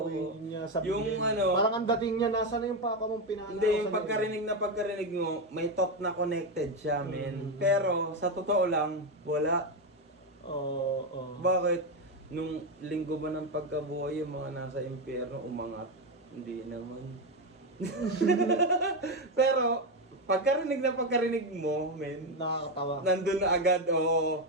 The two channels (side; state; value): both; normal; correlation 0.10